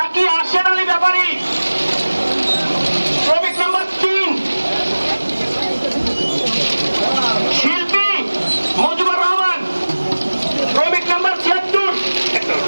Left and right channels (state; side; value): inverted; both; correlation -1.00